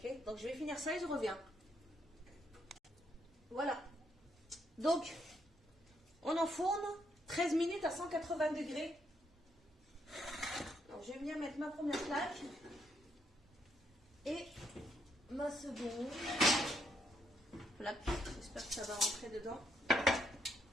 donc je vais finir ça et je reviens. Voilà. Donc, on enfourne 13 minutes à 180 degrés. Alors, je vais venir mettre ma première plaque et ma seconde plaque. J'espère que ça va rentrer dedans.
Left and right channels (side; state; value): both; normal; correlation 0.75